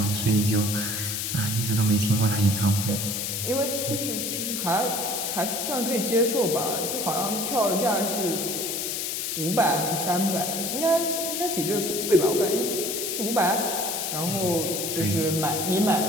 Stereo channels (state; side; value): noise; left; hiss, 2 dB below the sound